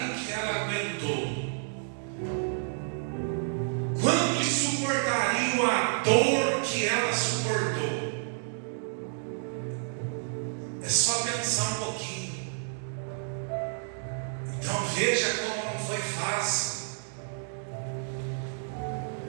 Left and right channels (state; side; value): silent; left; digital silence